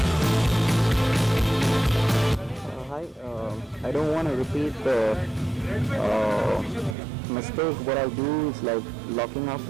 Hi, I don't want to repeat the mistake. What I do is like locking up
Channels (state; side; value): drops out; left; at 7.0 s